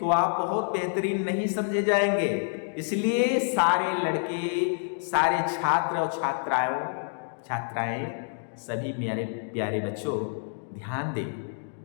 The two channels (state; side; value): silent; right; digital silence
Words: आप बहुत बेहतरीन नहीं समझे जाएंगे। इसलिए सारे लड़के, सारे छात्र और छात्राएं सभी मेरे प्यारे बच्चों ध्यान दें,